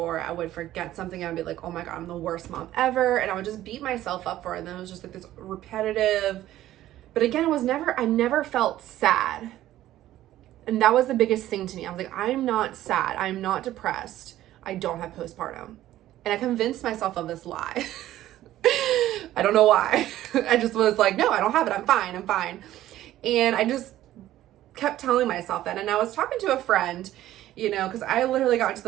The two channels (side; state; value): left; quieter; 13.9 dB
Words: I would forget something and I'd be oh my God, I'm the worst mom ever. And I would just beat myself up for it. And then it was just this repetitive, but again, I never felt sad. And that was the biggest thing to me. I was I'm not sad. I'm not depressed. I don't have postpartum. And I convinced myself of this lie. I don't know why. I just was no, I don't have it. I'm fine. And I just kept telling myself that. And I was talking to a friend, because I literally got to